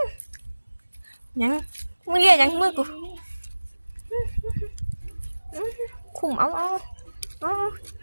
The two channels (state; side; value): inverted; both; correlation -1.00